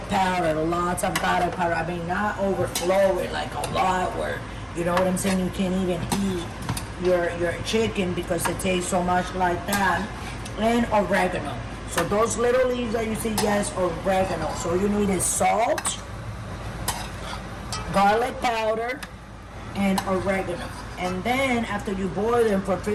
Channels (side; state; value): both; identical; correlation 1.00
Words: of garlic powder. I mean, not overflowing like a lot where, you know what I'm saying, you can't even eat your chicken because it tastes so much like that. And oregano. So those little leaves that you see, yes, oregano. So you need is salt, garlic powder, and oregano. And then after you boil them for